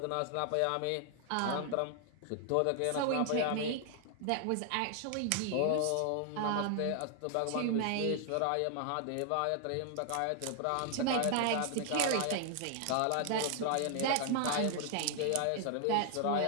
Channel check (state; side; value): different; both; correlation 0.00